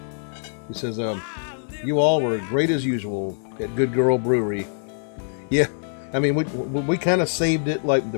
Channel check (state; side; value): silent; right; 63 dB below the other